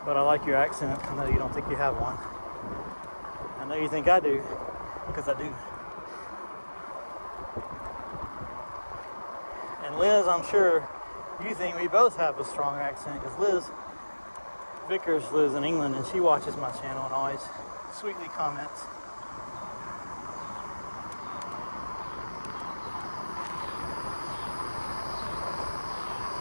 But I like your accent. I know you don't think you have one. I know you think I do, because I do. And Liz, I'm sure you think we both have a strong accent, because Liz Vickers lives in England and she watches my channel and always sweetly comments.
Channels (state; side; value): inverted; both; correlation -1.00